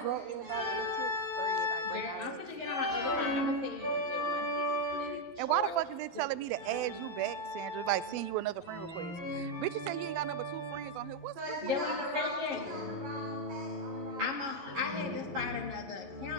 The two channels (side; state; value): left; late; 12 ms